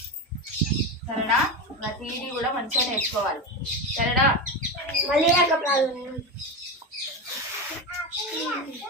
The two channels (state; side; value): normal; both; correlation 0.18